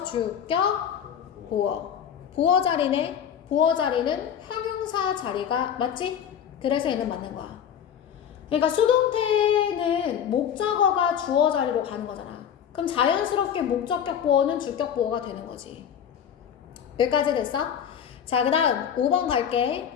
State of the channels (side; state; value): right; quieter; 8.7 dB